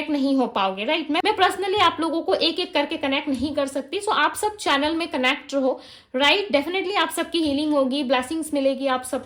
नहीं हो पाओगे, राइट। मैं पर्सनली आप लोगों को एक एक करके कनेक्ट नहीं कर सकती। सो आप सब चैनल में कनेक्ट रहो, राइट। डेफिनेटली आप सबकी हीलिंग होगी, ब्लेसिंग्स मिलेगी आप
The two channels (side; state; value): both; identical; correlation 1.00